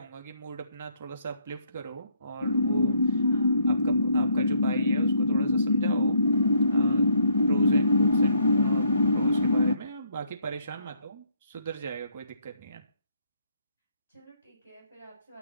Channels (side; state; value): both; inverted; correlation -0.70